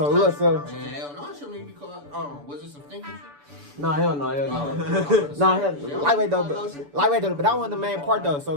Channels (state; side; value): late; left; 6.9 ms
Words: look. So Hell no, I shouldn't even be called. Was it some thinking shit? no, hell no. Lightweight though. But that wasn't the main part though. So